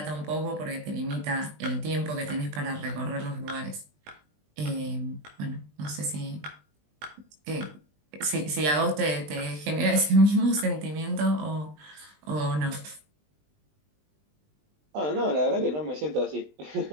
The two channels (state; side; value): late; left; 20 ms